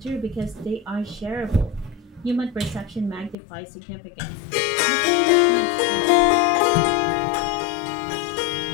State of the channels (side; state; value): right; drops out; at 3.4 s